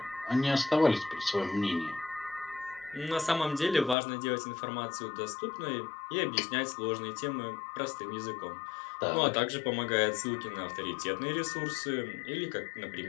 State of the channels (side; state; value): right; drops out; at 4.0 s